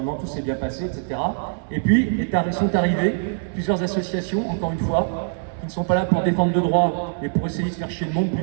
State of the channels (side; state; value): left; silent; 61 dB below the other